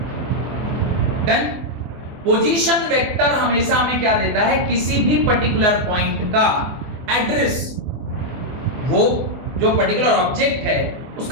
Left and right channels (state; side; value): late; left; 24 ms